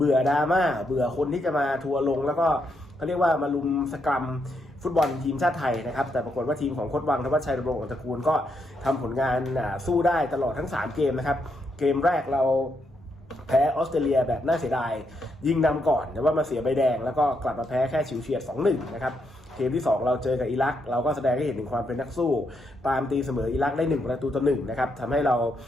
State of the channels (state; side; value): normal; both; correlation 0.79